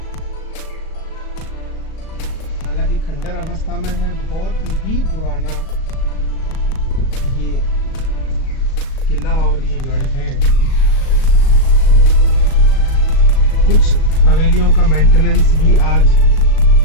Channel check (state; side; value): late; right; 37 ms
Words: हालांकि खंडर अवस्था में है, बहुत ही पुराना ये किला और ये गढ़ है। कुछ हवेलियों का मेंटेनेंस भी आज